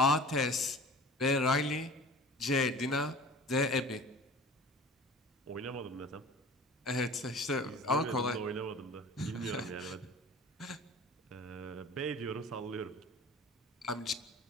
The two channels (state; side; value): normal; both; correlation 0.42